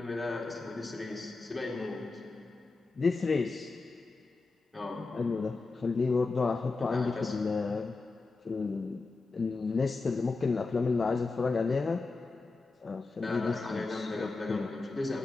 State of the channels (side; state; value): right; quieter; 3.8 dB